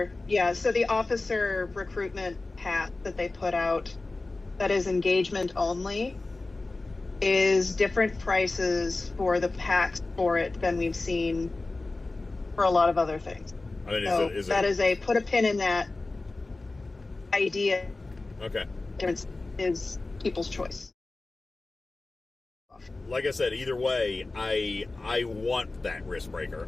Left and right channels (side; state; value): right; quieter; 3.3 dB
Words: recruitment pack that they put out that is engagement only is different prices for the packs for it than we've seen for a lot of other things. I mean, that is a put a pin in that idea. Okay. Is people's choice. Like I said, either way, I want that risk breaker.